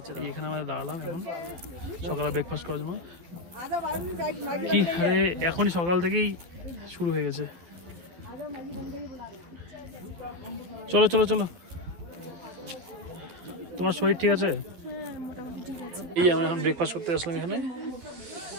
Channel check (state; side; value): late; left; 12 ms